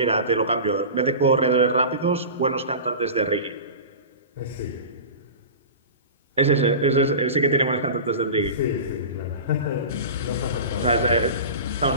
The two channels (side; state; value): both; inverted; correlation -0.32